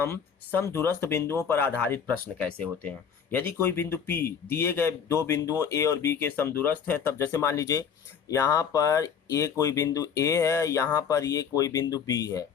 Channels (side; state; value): right; quieter; 7.3 dB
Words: समदूरस्थ बिंदुओं पर आधारित प्रश्न कैसे होते हैं। यदि कोई बिंदु P दिए गए दो बिंदुओं A और B के समदूरस्थ है, तब जैसे मान लीजिए यहाँ पर ये कोई बिंदु A है, यहाँ पर ये कोई बिंदु B है,